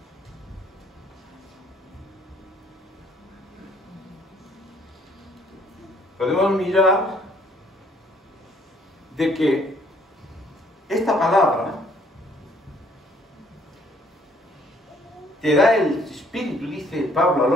mirar de que esta palabra te da el Espíritu, dice Pablo a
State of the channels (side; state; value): both; normal; correlation 0.63